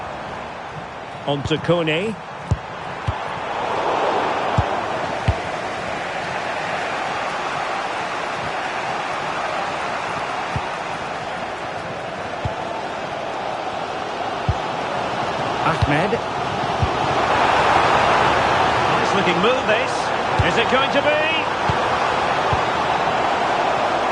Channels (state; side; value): identical; both; correlation 1.00